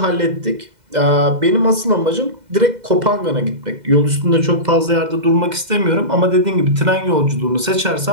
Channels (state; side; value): late; left; 2.0 ms